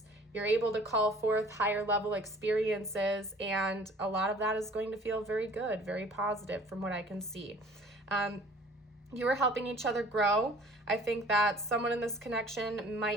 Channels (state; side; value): normal; both; correlation 0.51